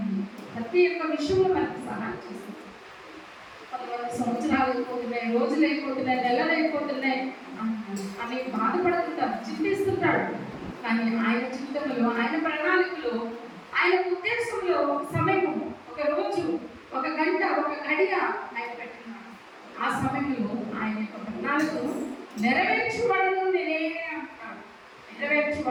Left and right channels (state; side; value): identical; both; correlation 1.00